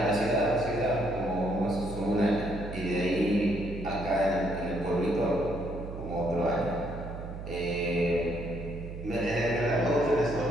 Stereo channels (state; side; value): noise; right; hum, 9 dB below the sound